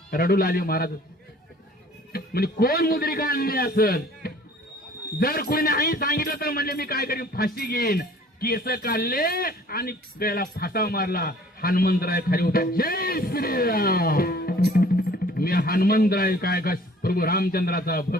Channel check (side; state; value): both; normal; correlation 0.52